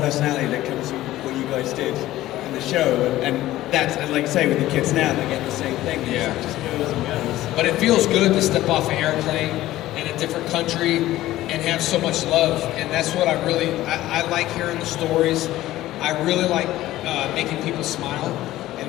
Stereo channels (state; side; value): quieter; right; 15.4 dB